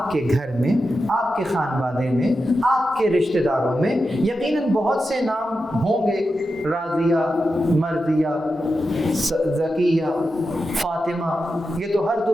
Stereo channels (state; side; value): normal; both; correlation 0.90